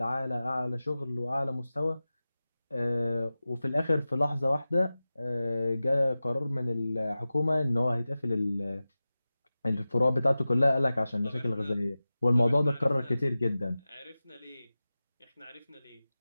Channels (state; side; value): inverted; both; correlation -0.95